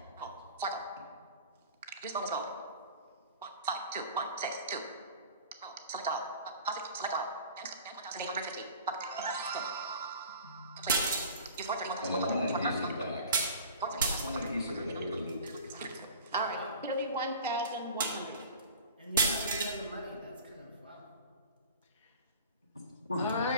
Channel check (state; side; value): inverted; both; correlation -0.42